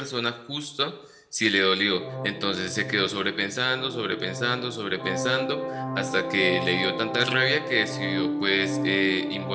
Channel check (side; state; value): both; identical; correlation 1.00